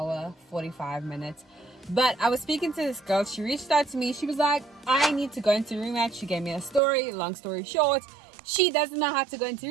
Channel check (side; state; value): left; drops out; at 6.8 s